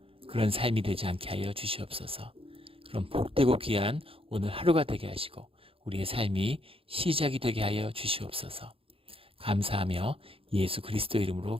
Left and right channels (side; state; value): left; late; 0.27 ms